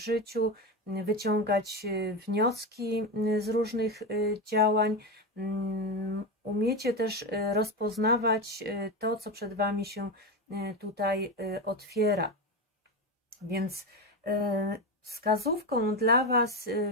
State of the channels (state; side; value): normal; both; correlation 0.16